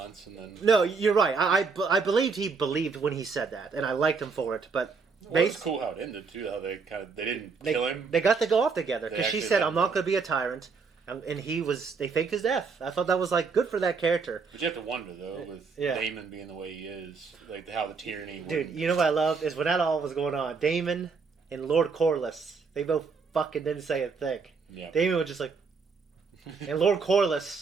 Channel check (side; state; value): left; quieter; 4.9 dB